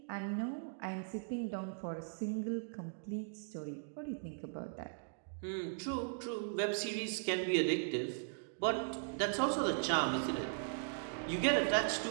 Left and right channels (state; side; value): silent; left; digital silence